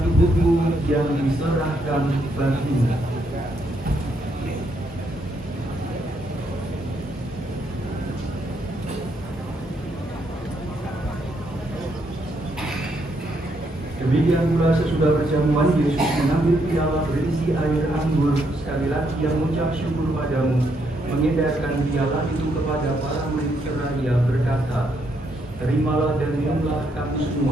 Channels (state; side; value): normal; both; correlation 0.75